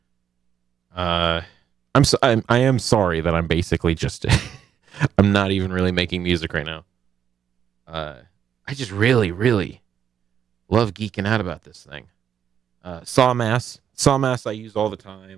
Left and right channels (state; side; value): quieter; left; 8.6 dB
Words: I am sorry that I'm basically just... I'm not even really making music right now. I just really, really love geeking out about this thing. Sawmass I use all the